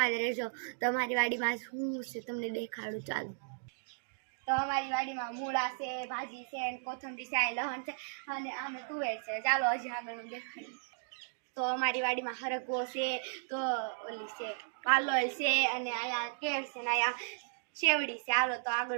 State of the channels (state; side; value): silent; left; digital silence